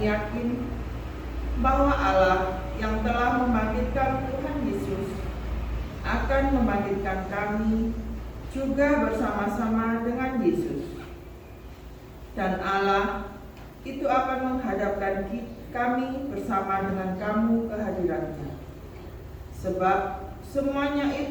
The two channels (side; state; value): both; identical; correlation 1.00